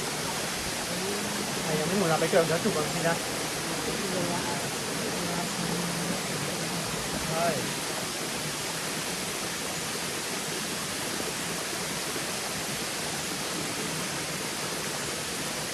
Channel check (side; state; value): both; identical; correlation 1.00